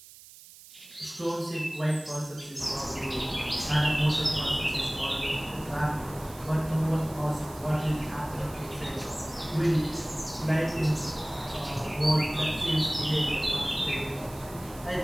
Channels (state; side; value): noise; right; hiss, 19 dB below the sound